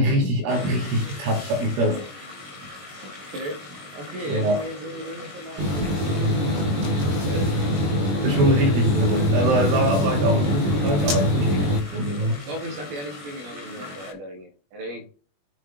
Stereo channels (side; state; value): left; late; 21 ms